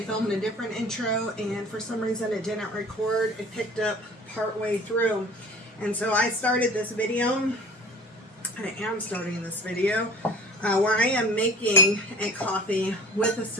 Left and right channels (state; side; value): normal; both; correlation 0.43